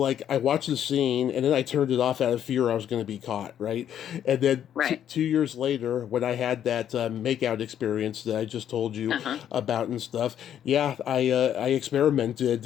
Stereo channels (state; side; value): quieter; right; 10.0 dB